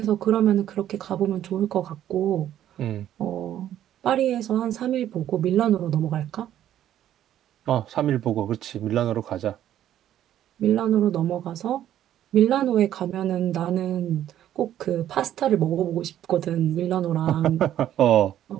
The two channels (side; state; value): left; quieter; 11.6 dB